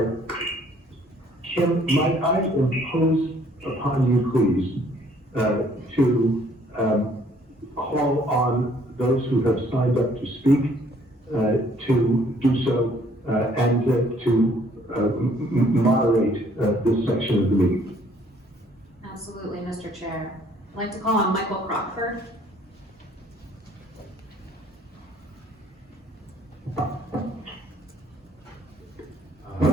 Kim, might I impose upon you, please, to call on those who have signed up to speak to do so and to moderate this section of the meeting. Absolutely, Mr. Chair. I'd like to call on Michael Crockford.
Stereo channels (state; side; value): normal; both; correlation 0.61